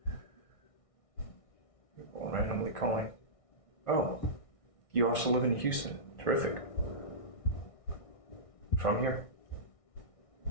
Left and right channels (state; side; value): late; right; 1.6 ms